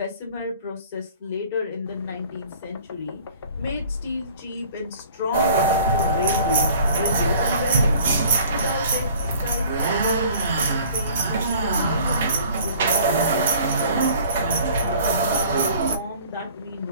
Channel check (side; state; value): both; inverted; correlation -0.50